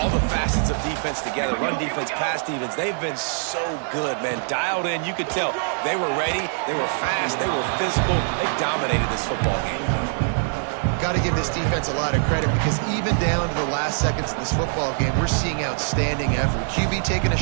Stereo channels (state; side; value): silent; left; digital silence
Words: the facets of defense together. Run defense, pass defense. They've been so good, man. Dialed in. You could tell they were ready. They were fast. They were physical. They dominated this football game. Got to give this defense a lot of credit because even down to the last seconds of this football game, we're seeing outstanding effort. QB taking a